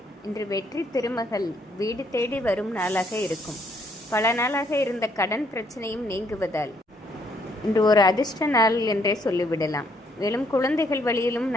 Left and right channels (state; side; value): normal; both; correlation 0.69